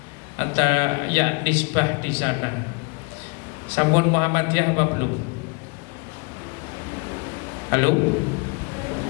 atau ya nisbah di sana, sampun Muhammadiyah apa belum? Halo?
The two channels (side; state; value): right; quieter; 33.3 dB